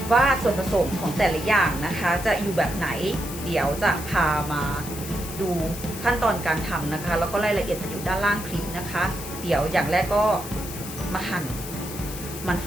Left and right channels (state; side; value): noise; left; hiss, 11 dB below the sound